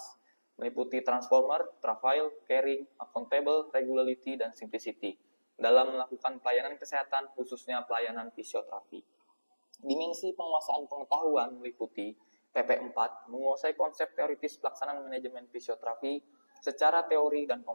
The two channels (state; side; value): inverted; both; correlation -1.00